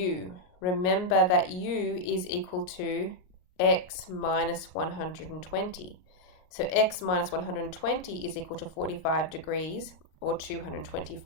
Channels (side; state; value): right; late; 38 ms